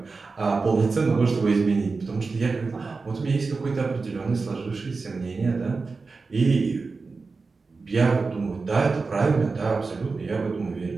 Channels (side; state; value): left; quieter; 4.2 dB